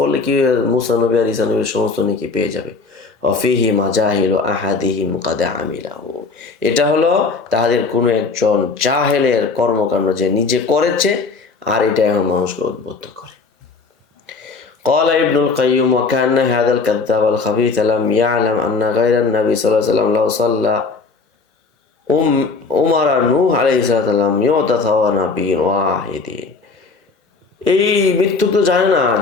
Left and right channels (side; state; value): right; quieter; 4.3 dB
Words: কি মূসা নবী আর ঈসা নবীর সমস্ত নেকি পেয়ে যাবে। ওয়া ফিহি মাজাহিলু আহাদিহিম কাদ আমিলাহু, এটা হলো তাদের কোনো একজন জাহেলের কর্মকাণ্ড, যে নিজে করেছে আর এটা এখন মানুষকে উদ্বুদ্ধ করে। قال ابن القيم وكأن هذا الكذاب الخبيث لم يعلم أن غير النبي صلى الله عليه وسلم لو صلى عمر نوح عليه السلام يعطى ثواب نبي واحد। এই মৃত্যু তো জানে না